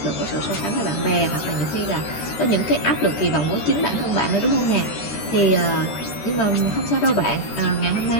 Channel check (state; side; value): late; right; 13 ms